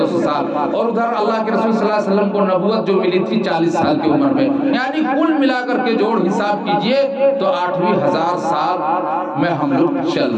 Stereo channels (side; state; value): both; identical; correlation 1.00